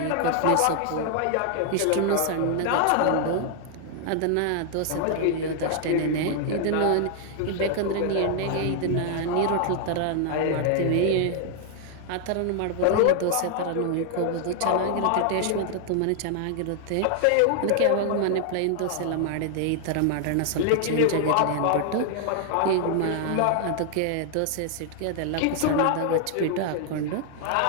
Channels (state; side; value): different; both; correlation 0.00